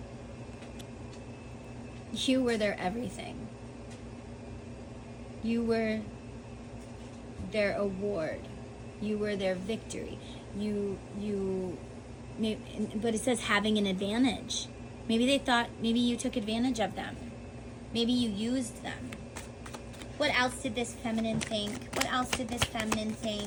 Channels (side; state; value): both; identical; correlation 1.00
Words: You were their everything. You were their award. You were their victory. But it says having an advantage. Maybe they thought, maybe you took advantage of them. Maybe you used them. What else did this feminine think? What else did this feminine